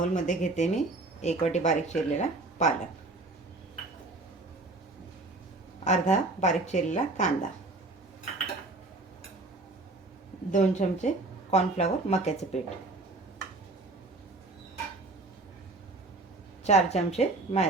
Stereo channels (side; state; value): left; quieter; 3.1 dB